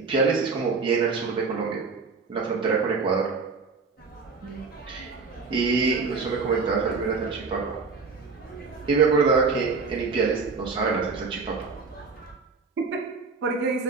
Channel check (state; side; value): quieter; left; 4.6 dB